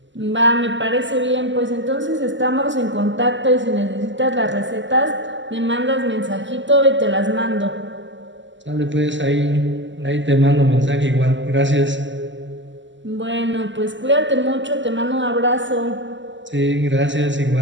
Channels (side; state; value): left; late; 0.54 ms